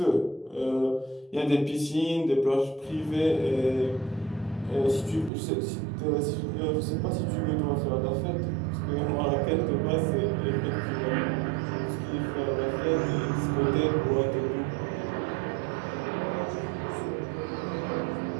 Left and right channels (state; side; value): drops out; left; at 5.3 s